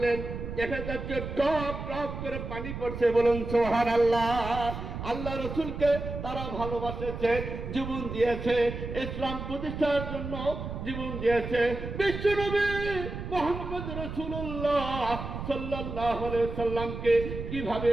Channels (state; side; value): noise; right; rumble, 7 dB below the sound